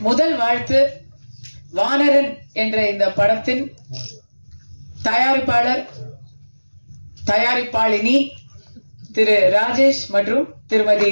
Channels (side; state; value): both; inverted; correlation -1.00